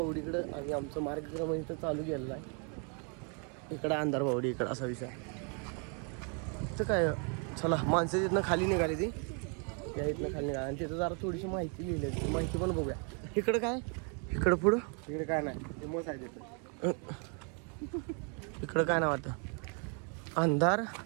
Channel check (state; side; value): quieter; left; 38.3 dB